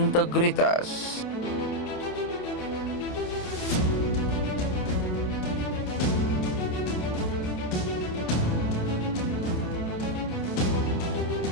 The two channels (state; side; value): late; right; 28 ms